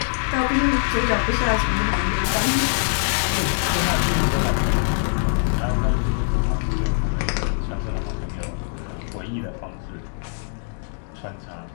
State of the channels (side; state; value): right; silent; digital silence